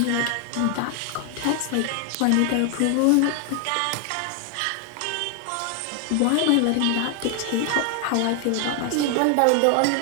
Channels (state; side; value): different; both; correlation 0.00